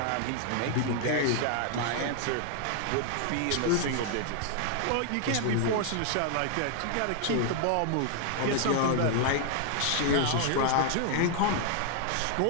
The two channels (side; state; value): both; different; correlation 0.00